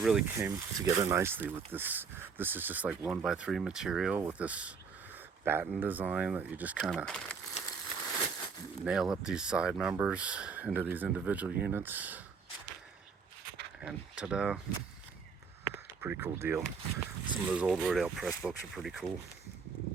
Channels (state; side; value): quieter; left; 5.7 dB